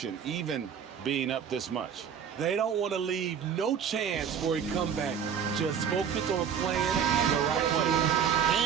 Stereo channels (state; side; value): quieter; left; 7.8 dB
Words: even being up this much. They don't want to leave no chance for a comeback. Just focus on playing the right way.